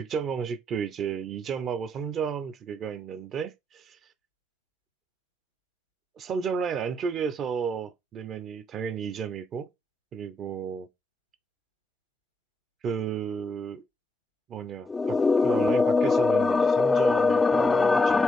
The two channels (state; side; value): normal; both; correlation 0.82